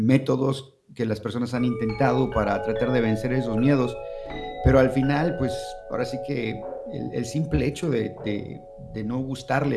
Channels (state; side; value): identical; both; correlation 1.00